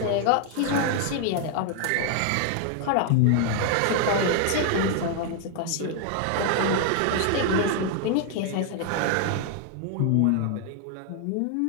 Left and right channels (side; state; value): both; different; correlation 0.00